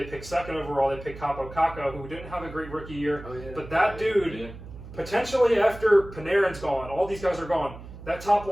picked 2nd overall. They picked Kaapo Kakko, who didn't have a great rookie year. But that dude... Potentially after Panarin's gone, all these guys are gone. That top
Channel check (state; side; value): noise; right; hum, 14 dB below the sound